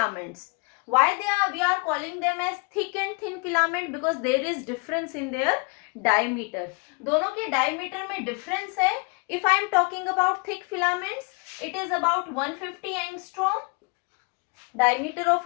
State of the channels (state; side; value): quieter; right; 32.4 dB